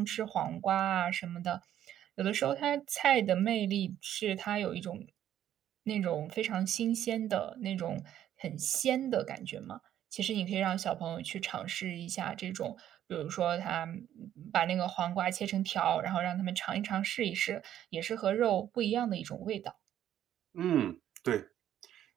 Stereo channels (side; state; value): left; quieter; 11.2 dB